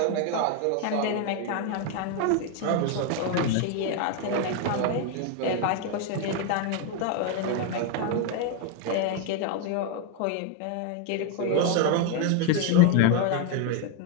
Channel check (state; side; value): different; both; correlation 0.01